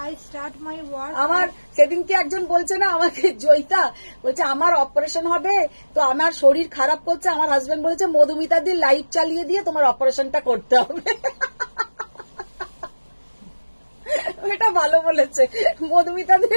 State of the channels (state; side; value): inverted; both; correlation -1.00